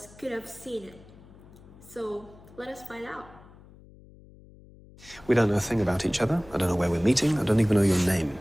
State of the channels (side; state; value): left; noise; hum, 22 dB below the sound